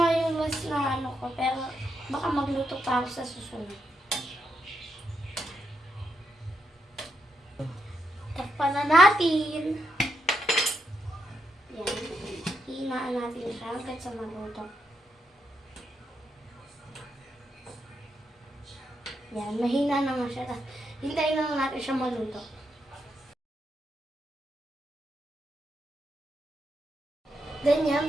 yung last na ko. Pero, baka magluto pa ako sa susunod. Takpan na natin. Yan. Hinaan natin siya hanggang sa maluto. Yan. Mahina naman siya. Hintayin lang natin siya maluto. Then yan,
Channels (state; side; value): normal; both; correlation 0.82